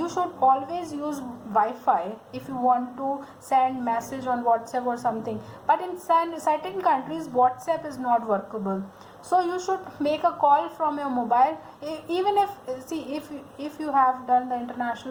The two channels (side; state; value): both; identical; correlation 1.00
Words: should always use Wi-Fi if you want to send message on WhatsApp or something. But in certain countries, WhatsApp is not workable. So you should make a call from your mobile. Even if you have done the